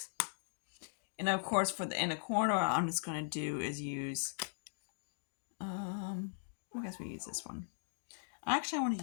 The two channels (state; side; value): silent; right; digital silence